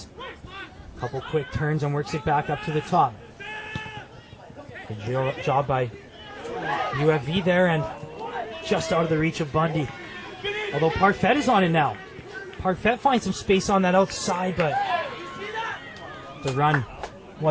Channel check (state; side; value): identical; both; correlation 1.00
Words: Couple quick turns and works it back up to the top. Good job by UFV there, and just out of the reach of Bundy. Although Parfait is on it now. Parfait finds some space on that outside, but the run